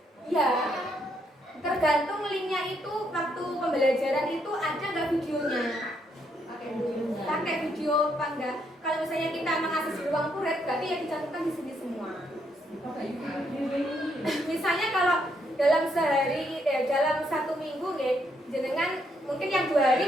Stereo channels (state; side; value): normal; both; correlation 0.75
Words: iya, tergantung linknya itu waktu pembelajaran itu ada nggak videonya. Pakai video apa enggak? Kalau misalnya kita mengakses di ruang murid, berarti ya dicantumkan di sini semua. Misalnya kalau dalam sehari, dalam 1 minggu, jenengan mungkin yang 2 hari